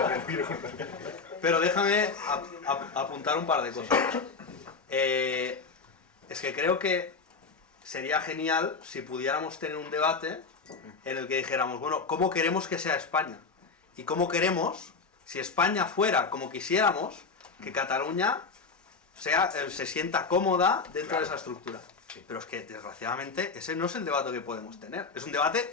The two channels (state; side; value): quieter; right; 4.6 dB